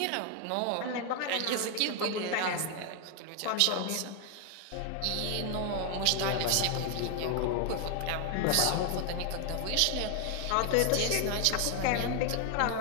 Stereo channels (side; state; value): both; different; correlation 0.00